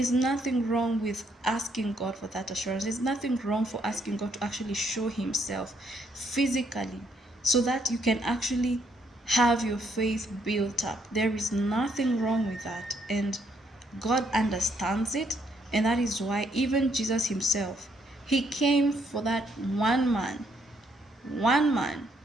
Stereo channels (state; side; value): normal; both; correlation 0.72